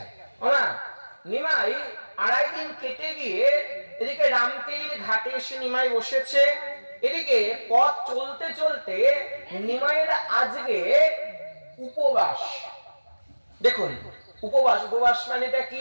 নিমাই 2.5 দিন কেটে গিয়ে এদিকে রামকেলির ঘাটে এসে নিমাই বসেছে। এদিকে পথ চলতে চলতে নিমাইয়ের আজকে উপবাস। দেখুন উপবাস, উপবাস মানেটা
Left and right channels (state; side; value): inverted; both; correlation -1.00